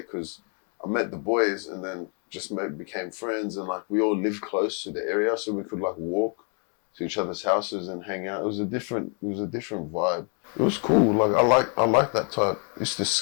because I met the boys and then just became friends, and like we all lived close to the area, so we could like walk to each other's houses and hang out. It was a different vibe. It was cool. Like I like that type. Used to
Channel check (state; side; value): quieter; right; 39.6 dB